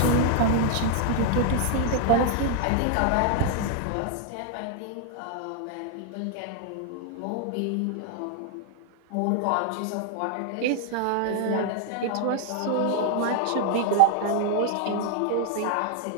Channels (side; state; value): both; different; correlation 0.00